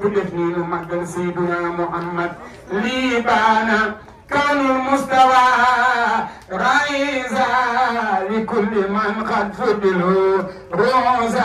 مقدم سيدنا محمد ليبانا كان المستوى رئيسا كل من قد فضلوا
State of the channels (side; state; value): both; identical; correlation 1.00